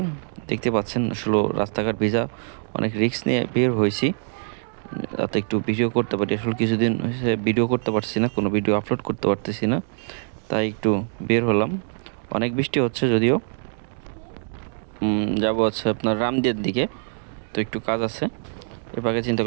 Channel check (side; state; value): left; silent; 59 dB below the other